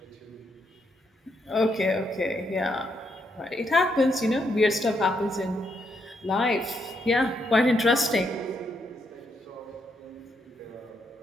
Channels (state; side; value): normal; both; correlation 0.78